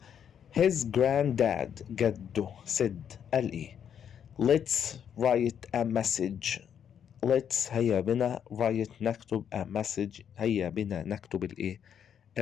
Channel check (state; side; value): quieter; right; 8.5 dB